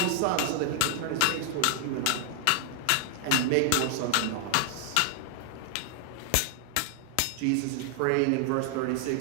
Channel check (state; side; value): different; both; correlation 0.00